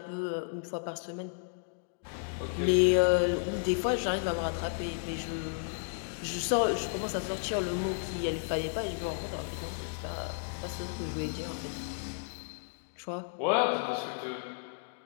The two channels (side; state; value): right; silent; digital silence